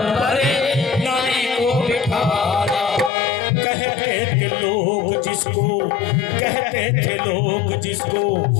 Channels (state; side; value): drops out; right; at 3.1 s